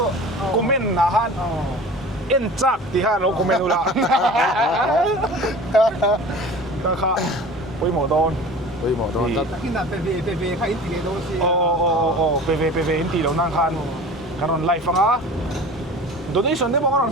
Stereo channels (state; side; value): normal; both; correlation 0.40